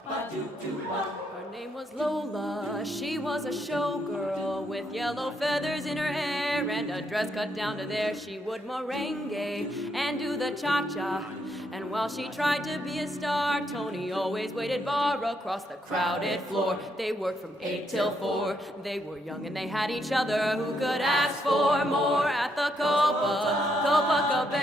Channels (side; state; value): both; normal; correlation 0.76